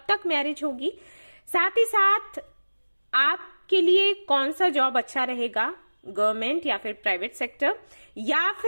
तक मैरिज होगी, साथ ही साथ आपके लिए कौन सा जॉब अच्छा रहेगा, गवर्नमेंट या फिर प्राइवेट सेक्टर, या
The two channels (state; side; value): inverted; both; correlation -1.00